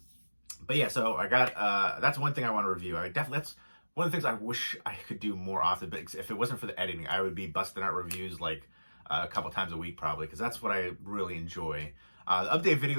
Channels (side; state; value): both; inverted; correlation -1.00